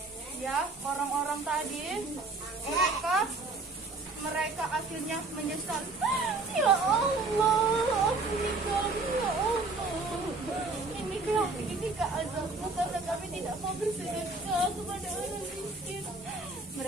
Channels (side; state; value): left; quieter; 3.5 dB